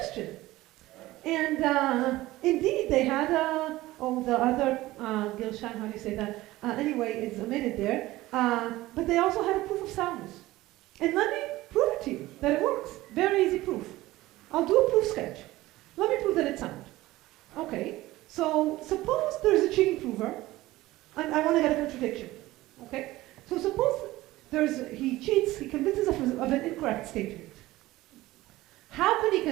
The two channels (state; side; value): quieter; left; 17.6 dB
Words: And indeed, they had the other Gilshan, how do you say that? Anyway, it's omitted there. But they also had a proof of soundness. And let me prove it to you, that it works. Very easy proof. I'll do a proof sketch. Let me prove that it's sound. Okay, so suppose there's a cheating prover, and I want to get a contradiction. Okay, so suppose he cheats, he convinces us of an incorrect statement. How can he